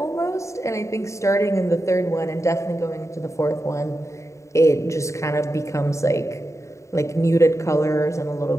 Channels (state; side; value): late; right; 0.14 ms